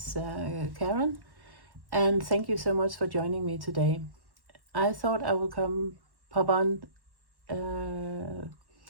Karen, and thank you so much for joining me today. I thought I would pop on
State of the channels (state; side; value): late; left; 1.1 ms